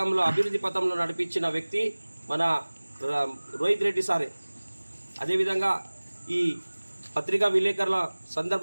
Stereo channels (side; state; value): both; inverted; correlation -1.00